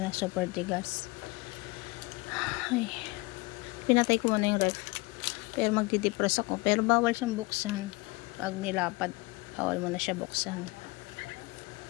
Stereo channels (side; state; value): right; quieter; 24.4 dB